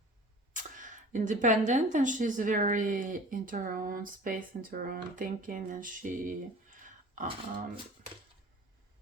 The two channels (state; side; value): normal; both; correlation 0.43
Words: independent, and she's very into her own space, into her own thinking, and she